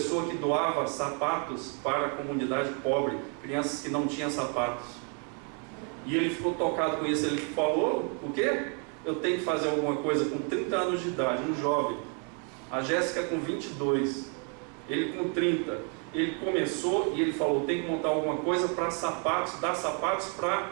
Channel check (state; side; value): quieter; left; 38.7 dB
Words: que doava sapatos para a comunidade pobre, crianças que não tinham sapatos. E ele ficou tocado com isso. Ele falou, o quê? Eu tenho que fazer alguma coisa com 30 anos de idade, um jovem. A Jéssica com 22, ele com 30. Ele começou e ele falou, tem que montar alguma coisa para sapatos, dar sapatos para